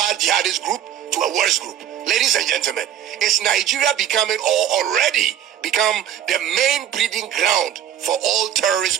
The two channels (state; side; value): quieter; left; 10.1 dB